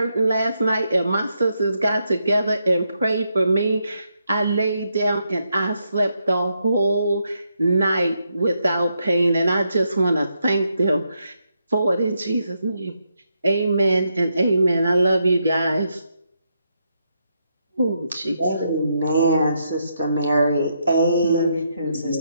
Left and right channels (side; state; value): both; inverted; correlation -0.80